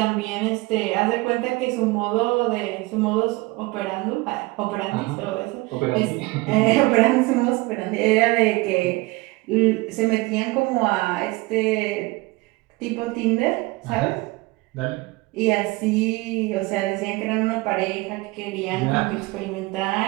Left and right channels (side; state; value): left; quieter; 22.1 dB